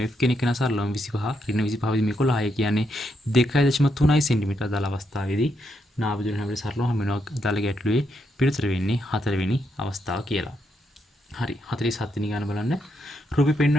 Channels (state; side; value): normal; both; correlation 0.80